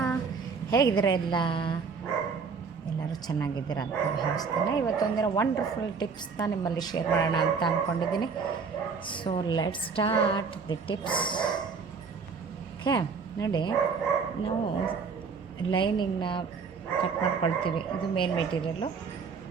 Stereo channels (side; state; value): left; quieter; 5.4 dB